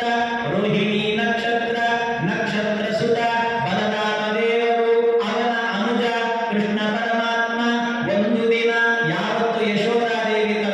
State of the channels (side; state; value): both; identical; correlation 1.00